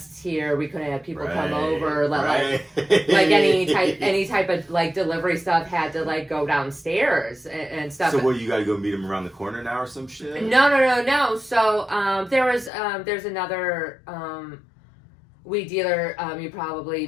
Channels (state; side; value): drops out; right; at 12.7 s